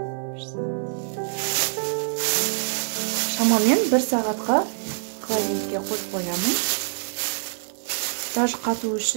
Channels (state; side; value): silent; left; digital silence